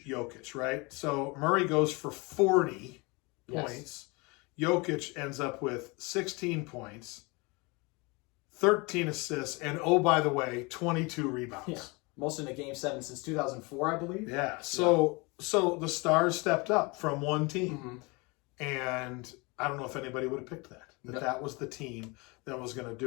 right? So, Murray goes for 40 points. Jokic ends up with 16 points, 13 assists, and, oh, by the way, 22 rebounds. Yeah. Most in a Game 7 since 2004, I believe. Yeah. So the Stars stepped up from one team. And I don't know if anybody would have picked that. That was the team that was going to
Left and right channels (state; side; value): quieter; right; 27.2 dB